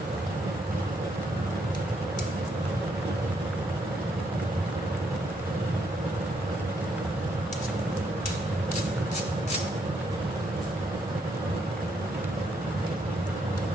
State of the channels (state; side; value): normal; both; correlation 0.75